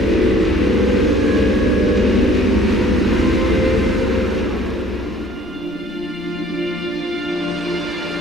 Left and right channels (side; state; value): both; normal; correlation 0.55